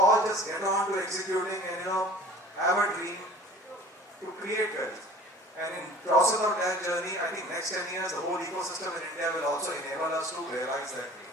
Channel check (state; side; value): normal; both; correlation 0.46